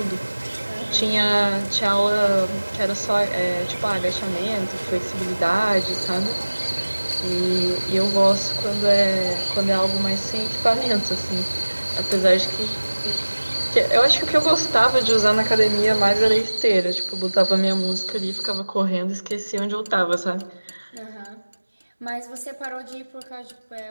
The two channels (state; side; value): inverted; both; correlation -1.00